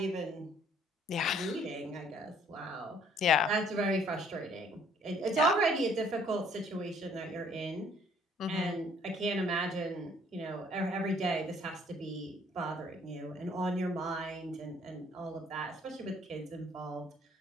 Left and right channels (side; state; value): both; normal; correlation 0.61